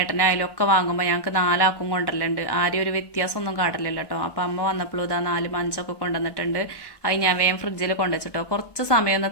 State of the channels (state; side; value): late; right; 1.2 ms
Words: ഒക്കെ വാങ്ങുമ്പോൾ ഞങ്ങൾക്ക് 4 ആൾക്കും കൊണ്ടുവരലുണ്ട്. ആരും ഒരു വ്യത്യാസമൊന്നും കാട്ടില്ലല്ലോ കേട്ടോ. അപ്പം അമ്മ വന്നപ്പോഴും ഇതാ 4 മഞ്ചൊക്കെ കൊണ്ടുവന്നിട്ടുണ്ട്. അത് ഞാൻ വേഗം ഫ്രിഡ്ജിൽ കൊണ്ടുവച്ചിട്ടോ. കുറച്ച് സമയം ഒന്ന്